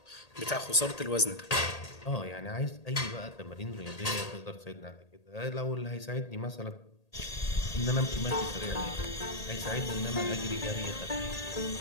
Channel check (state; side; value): late; right; 1.8 ms